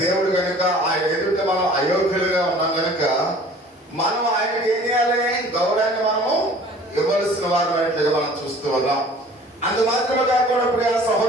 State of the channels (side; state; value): both; normal; correlation 0.49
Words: దేవుడు కనుక ఆయన ఎదుట మనం అయోగ్యులుగా ఉన్నాం కనుక మనం ఆయనకి ఏం చేయాలి, గౌరవాన్ని మనము ఇవ్వవలసిన వారు అనేట్లుగా మనం చూస్తూ ఉన్నాం. అంత మాత్రమే కాకుండా ప్రియ